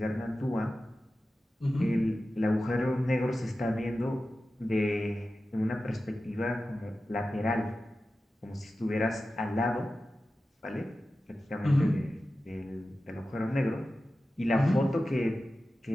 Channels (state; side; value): normal; both; correlation 0.94